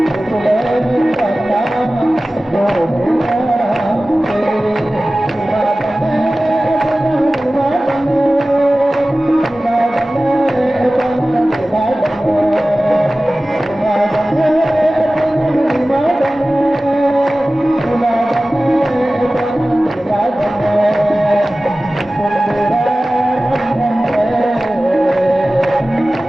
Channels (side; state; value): both; normal; correlation 0.97